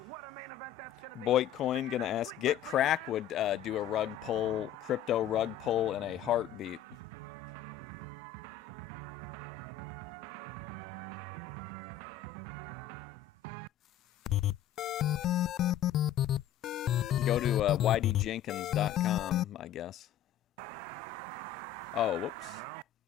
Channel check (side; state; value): right; quieter; 9.8 dB